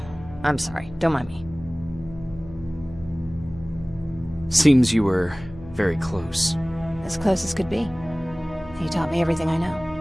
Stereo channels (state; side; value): noise; left; hum, 17 dB below the sound